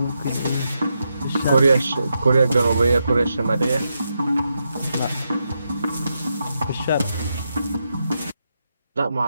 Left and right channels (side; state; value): both; inverted; correlation -0.85